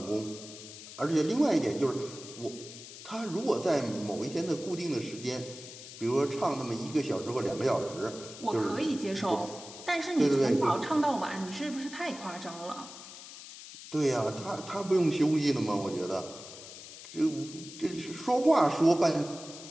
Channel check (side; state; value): left; noise; hiss, 14 dB below the sound